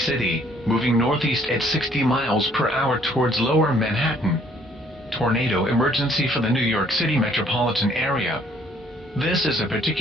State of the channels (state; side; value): normal; both; correlation 0.62